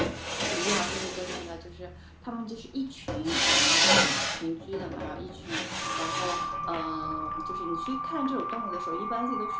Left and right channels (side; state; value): both; identical; correlation 1.00